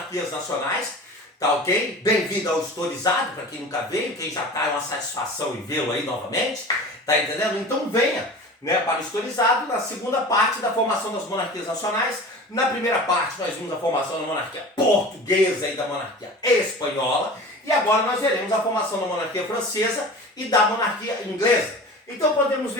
nacionais, tá ok? Bem-vindo ao Historizado, para quem nunca veio, quem já tá é uma satisfação em vê-lo aí novamente, tá entendendo? Então venha, né, para o Historizado, na segunda parte da formação das monarquias nacionais. Na primeira parte nós vimos a formação da monarquia portuguesa e da monarquia espanhola, e agora nós veremos a formação da monarquia francesa e da monarquia inglesa. Então podemos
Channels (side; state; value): both; normal; correlation 0.37